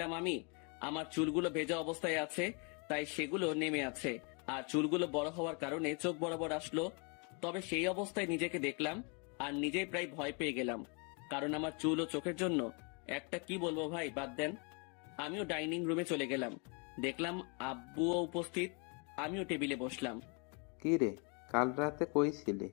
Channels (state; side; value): quieter; right; 34.9 dB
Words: আমি। আমার চুলগুলো ভেজা অবস্থায় আছে, তাই সেগুলো নেমে আছে, আর চুলগুলো বড় হওয়ার কারণে চোখ বরাবর আসলো। তবে সেই অবস্থায় নিজেকে দেখলাম আর নিজেই প্রায় ভয় পেয়ে গেলাম, কারণ আমার চুল ও চোখের জন্য একটা কি বলবো ভাই, বাদ দেন। আমিও ডাইনিং রুমে চলে গেলাম, দেখলাম আব্বুও উপস্থিত। আমিও টেবিলে বসলাম। কি রে, কাল রাতে কই ছিলি?